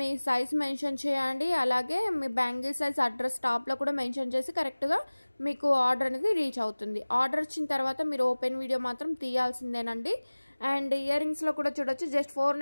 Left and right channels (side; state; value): both; inverted; correlation -1.00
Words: సైజ్ మెన్షన్ చేయండి. అలాగే మీ బ్యాంగిల్ సైజ్ అడ్రస్ టాప్లో కూడా మెన్షన్ చేసి కరెక్ట్గా మీకు ఆర్డర్ అనేది రీచ్ అవుతుంది. ఆర్డర్ వచ్చిన తర్వాత మీరు ఓపెన్ వీడియో మాత్రం తీయాల్సిందేనండి. అండ్ ఇయర్ రింగ్స్లో కూడా చూడొచ్చు జస్ట్